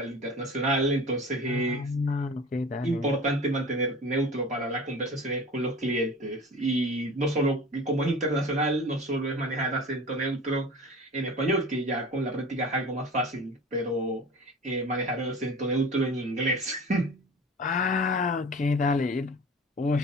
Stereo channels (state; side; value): normal; both; correlation 0.38